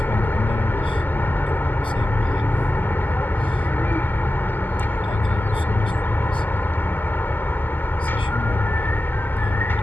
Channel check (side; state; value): both; normal; correlation 0.93